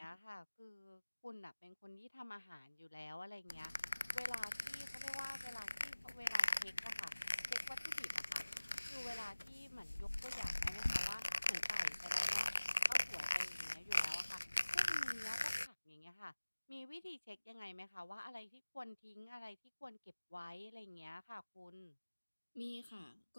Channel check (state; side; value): inverted; both; correlation -1.00